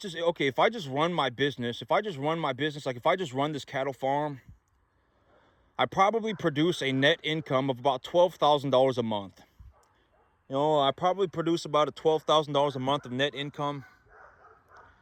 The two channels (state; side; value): identical; both; correlation 1.00